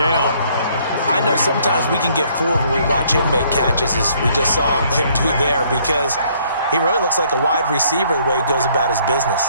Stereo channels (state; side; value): inverted; both; correlation -0.64